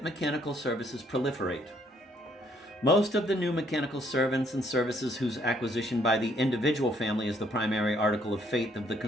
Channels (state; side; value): normal; both; correlation 0.67